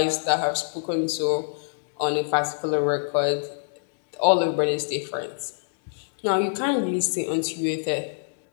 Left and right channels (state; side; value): silent; right; digital silence